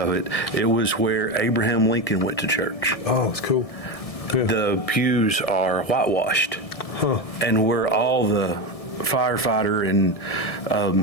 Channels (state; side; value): late; right; 1.7 ms